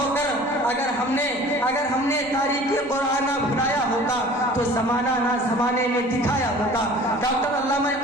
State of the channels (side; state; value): left; noise; rumble, 27 dB below the sound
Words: अगर हमने तारीख़े क़ुरान ना भुलाया होता तो ज़माना ना ज़माने में दिखाया होता। डॉक्टर अल्लामा